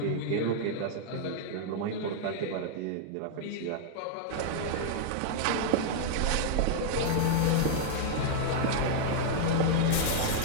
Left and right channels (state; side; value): different; both; correlation -0.01